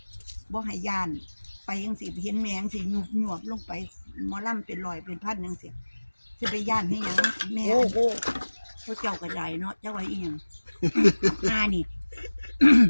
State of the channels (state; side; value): inverted; both; correlation -1.00